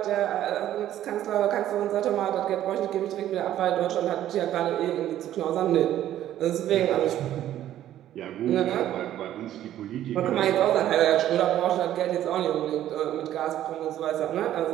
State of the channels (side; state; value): left; quieter; 12.2 dB